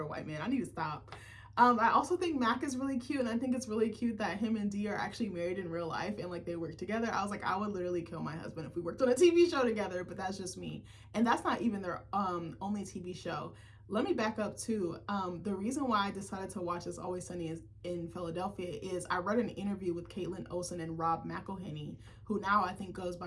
white man. I need to stop. I also think Mac is really cute, and I think it's really cute that him and Dee are actually married in real life and like they work together. I was like, I would literally kill my husband if we worked on a TV show together, but that's just me. And that's not even their only TV show. let me back up too. The reason why I decided to watch It's Always Sunny in Philadelphia is I read an interview with Caitlin Olsen and Rob McElhenney, who now I think goes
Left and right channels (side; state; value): both; identical; correlation 1.00